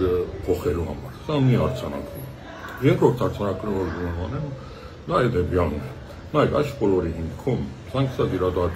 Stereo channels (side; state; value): both; identical; correlation 1.00